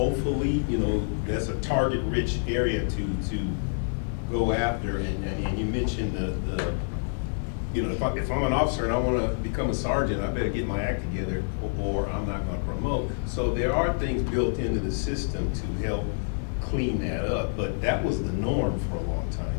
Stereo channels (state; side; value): silent; right; 60 dB below the other